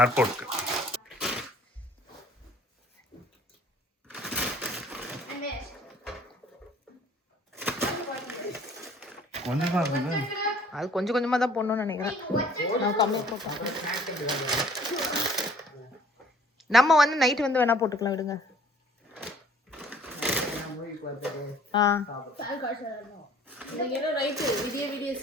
ஏர்போர்ட்க்கு. கொஞ்சமா இருக்குது. அது கொஞ்சம் கொஞ்சமா தான் போடணும்னு நினைக்கிறேன். நான் கம்மியா போட்டேன். நம்ம வந்து நைட் வந்து வேணா போட்டுக்கலாம் விடுங்க.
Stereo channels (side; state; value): both; normal; correlation 0.55